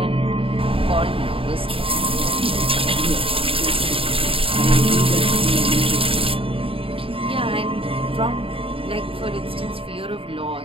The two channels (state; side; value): late; left; 0.27 ms